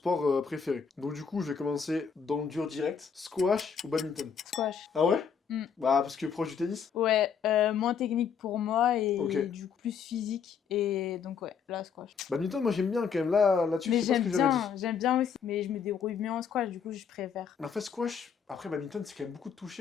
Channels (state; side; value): quieter; right; 6.8 dB